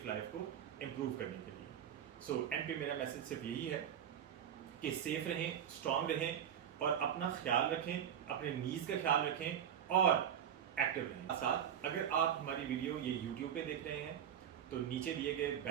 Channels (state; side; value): quieter; left; 9.2 dB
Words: लाइफ को इम्प्रूव करने के लिए। सो एंड पे मेरा मैसेज सिर्फ यही है कि सेफ रहें, स्ट्रांग रहें और अपना ख्याल रखें, अपने नीज का ख्याल रखें और एक्टिव रहें। साथ अगर आप हमारी वीडियो ये यूट्यूब पे देख रहे हैं तो नीचे दिए गए